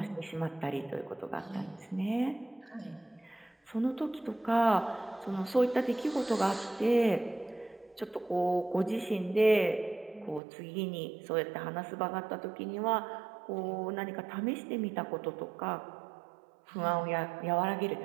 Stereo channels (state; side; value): drops out; left; at 10.4 s